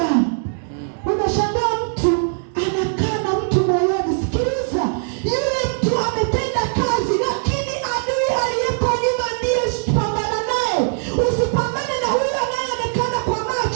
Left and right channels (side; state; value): left; silent; digital silence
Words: Unashangaa mtu anakaa na mtu moyoni. Sikiliza, yule mtu ametenda kazi, lakini adui aliyeko nyuma ndiye pambana naye. Usipambane na huyo anayeonekana kwa